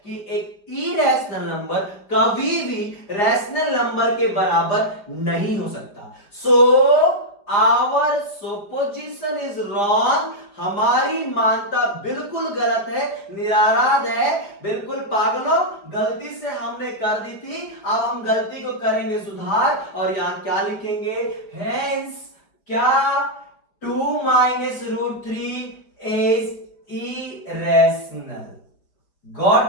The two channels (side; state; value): right; late; 5.1 ms